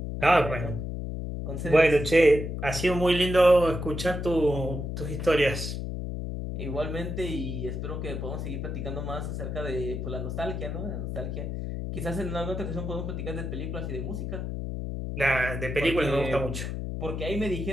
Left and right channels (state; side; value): noise; left; hum, 4 dB below the sound